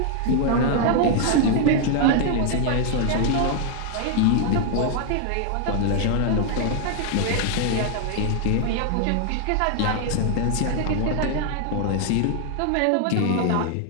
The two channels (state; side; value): different; both; correlation 0.00